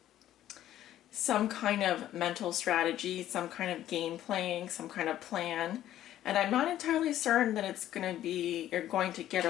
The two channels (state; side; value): quieter; right; 12.6 dB